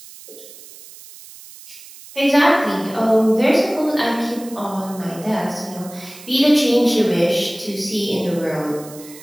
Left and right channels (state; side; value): noise; right; hiss, 18 dB below the sound